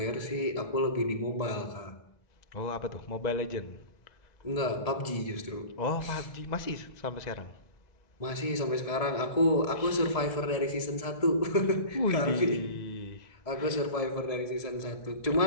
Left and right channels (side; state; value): right; late; 1.7 ms